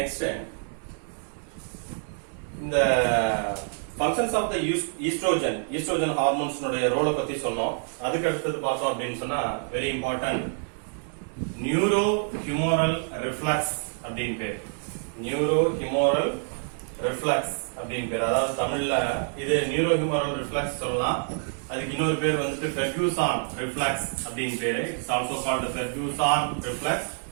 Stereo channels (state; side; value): silent; left; 55 dB below the other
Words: இந்த functions of the estrogen hormones உடைய ரோலை பத்தி சொன்னோம். அதுக்கு அடுத்து பார்த்தோம் அப்படின்னு சொன்னா very important neurohumoral reflex அப்படினு பேர். neurohumoral reflex அப்படினு பேர். அதாவது தமிழ்ல இது neurohumoral reflex சொல்லலாம். அதுக்கு இன்னொரு பேர் வந்துட்டு Ferguson reflex அப்படினு பேரு. It's also called Ferguson reflex.